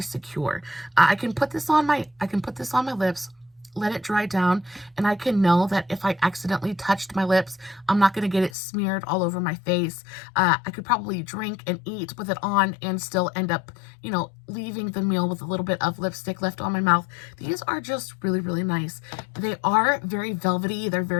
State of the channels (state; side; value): drops out; right; at 8.6 s